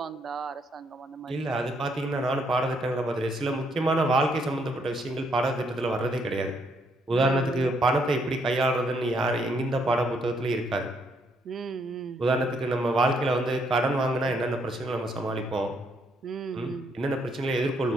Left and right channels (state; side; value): normal; both; correlation 0.72